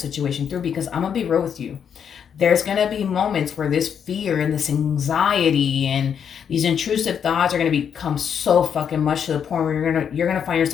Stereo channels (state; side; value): quieter; right; 7.8 dB